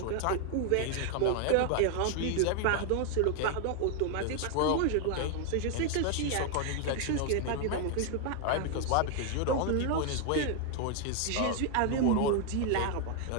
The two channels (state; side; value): different; both; correlation 0.00